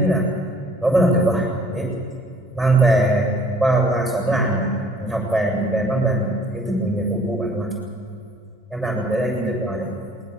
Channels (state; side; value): normal; both; correlation 0.56